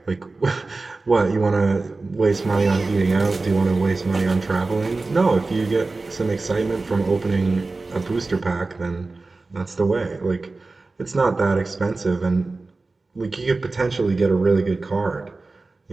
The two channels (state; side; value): quieter; left; 3.5 dB